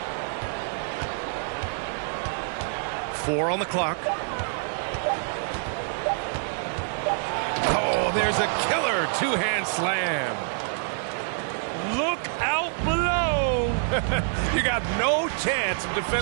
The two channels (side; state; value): left; silent; 61 dB below the other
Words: Four on the clock. Oh, there's a killer two-hand slam. Look out below. You got no chance of